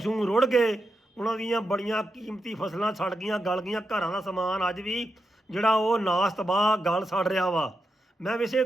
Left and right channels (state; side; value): normal; both; correlation 0.87